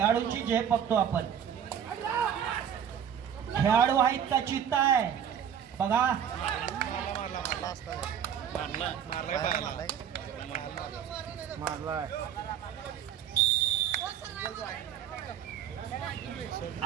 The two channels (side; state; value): left; quieter; 8.8 dB